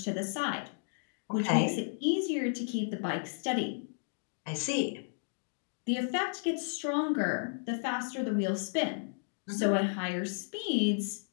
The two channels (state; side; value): silent; right; digital silence